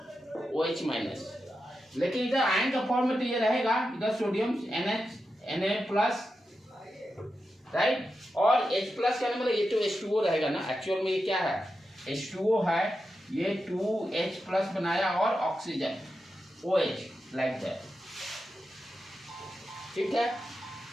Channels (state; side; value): normal; both; correlation 0.89